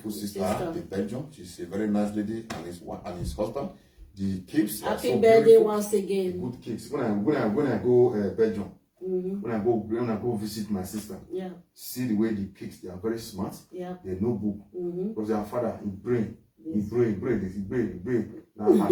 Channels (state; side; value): identical; both; correlation 1.00